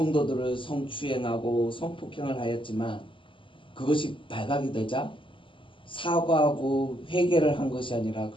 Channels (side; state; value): right; late; 0.25 ms